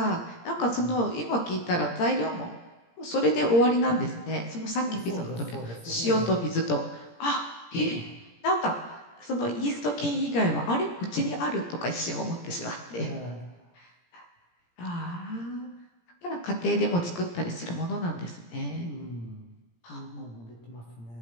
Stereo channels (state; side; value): late; right; 17 ms